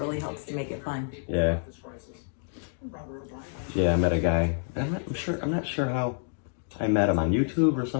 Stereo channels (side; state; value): right; silent; digital silence